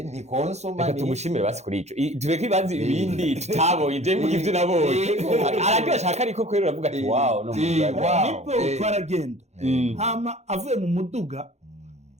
ni konsoma reka tumushimire basi kuri ico tureke ibanze ibindi tutabonye je mvuga ivyo nabonye araryo ashaka ariko kwera uravuga ati wow no nipo twaragenda hama avuye mu muduga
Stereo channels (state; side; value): late; left; 0.32 ms